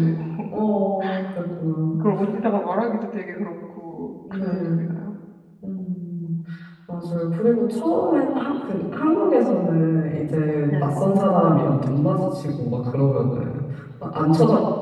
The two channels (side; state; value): both; identical; correlation 1.00